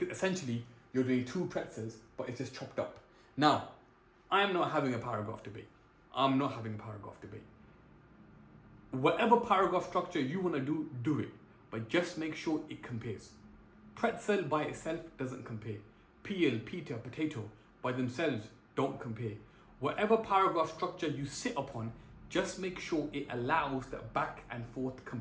essentially, you're doing 2 pretzels, but it's just chopped up. Now, I'm not having a paragraph debate. I'm not having a paragraph debate. Whatever paragraph structure you want to do, do it. But just make sure it compares. Pretzel by itself doesn't compare. Peel, Peter, potato by themselves don't compare. Whatever paragraph structure you sit upon, just make sure it allows that back and forth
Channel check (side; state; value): both; identical; correlation 1.00